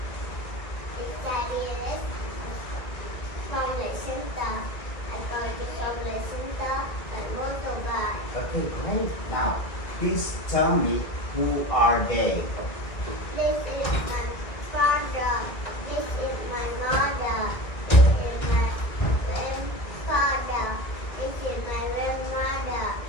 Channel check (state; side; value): late; right; 1.6 ms